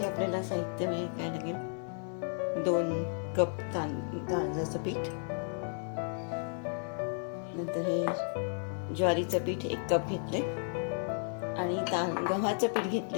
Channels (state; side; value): silent; right; 56 dB below the other